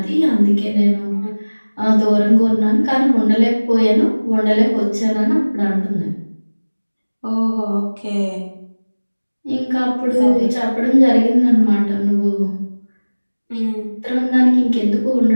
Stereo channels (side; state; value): both; inverted; correlation -1.00